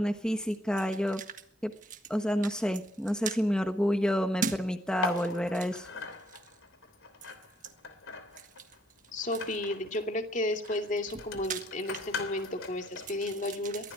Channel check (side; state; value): both; normal; correlation 0.69